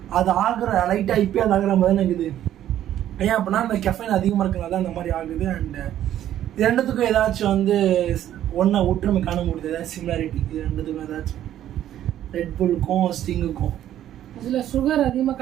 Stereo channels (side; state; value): left; quieter; 11.8 dB